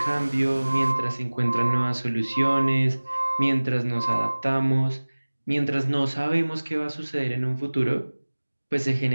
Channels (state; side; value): inverted; both; correlation -1.00